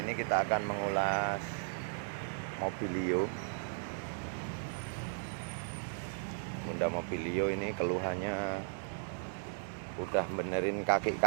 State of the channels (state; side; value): silent; left; digital silence